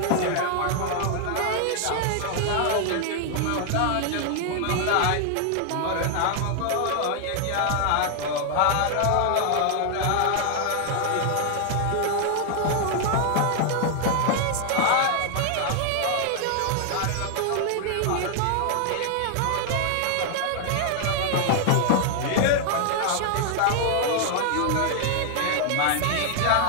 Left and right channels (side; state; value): both; different; correlation 0.00